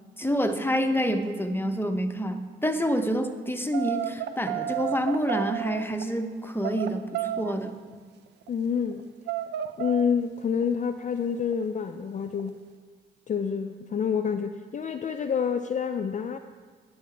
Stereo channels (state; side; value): normal; both; correlation 0.61